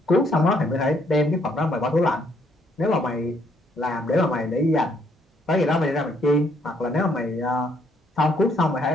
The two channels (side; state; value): both; normal; correlation 0.69